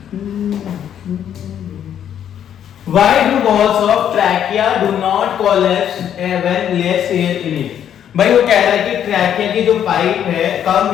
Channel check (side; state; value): right; quieter; 9.6 dB